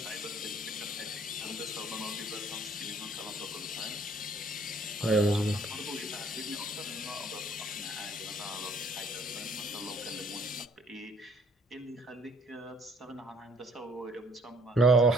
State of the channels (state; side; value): normal; both; correlation 0.60